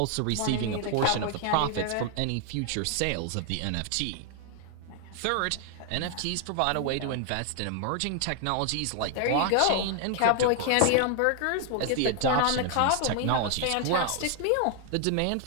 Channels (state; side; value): different; both; correlation 0.00